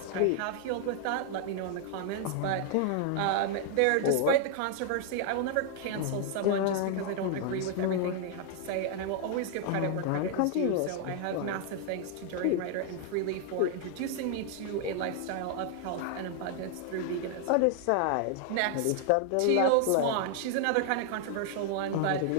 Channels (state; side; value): different; both; correlation 0.00